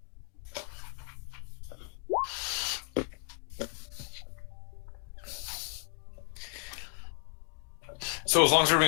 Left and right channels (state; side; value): quieter; right; 38.1 dB